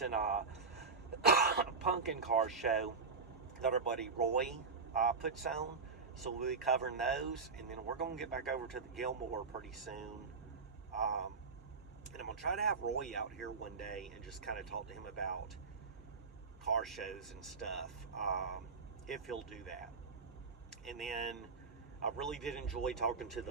Pumpkin car show that our buddy Roy puts on. So we'll be covering those, and then we're going to get back over to the Gilmore pretty soon. And I'm going to try to have Roy out here one day and just kind of talk to him about car shows and stuff, if he'll do that. And then I really did enjoy talking to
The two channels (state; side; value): quieter; left; 4.7 dB